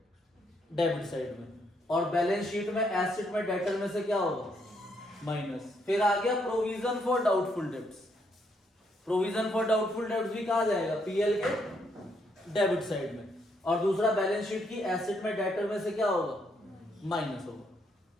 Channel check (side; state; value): both; normal; correlation 0.74